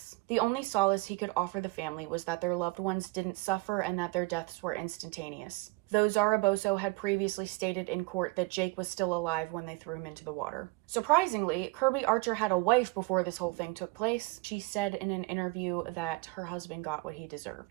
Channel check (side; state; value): left; quieter; 24.2 dB